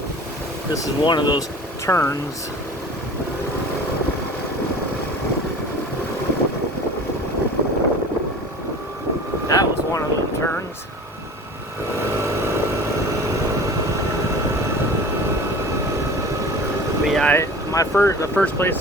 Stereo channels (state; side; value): normal; both; correlation 0.40